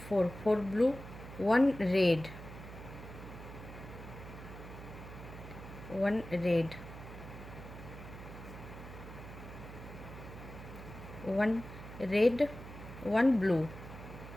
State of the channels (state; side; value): noise; right; hum, 13 dB below the sound